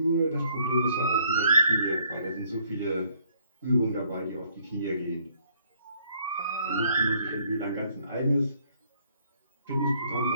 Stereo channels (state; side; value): inverted; both; correlation -0.66